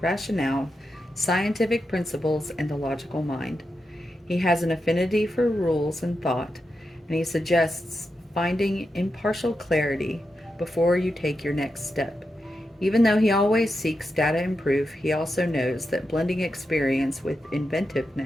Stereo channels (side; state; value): both; normal; correlation 0.87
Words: rationale, scientific principles, and the logical mind. He has an affinity for rules and thought, and he suggests finding impartial clarity before you take your next step. Even though he always seeks data and proof, he also knows that blending experience with